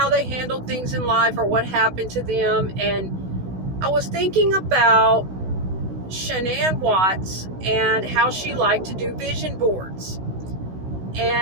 they handled things in life or what happened to them, and I was thinking about Shan'ann Watts and how she liked to do vision boards,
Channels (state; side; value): late; left; 16 ms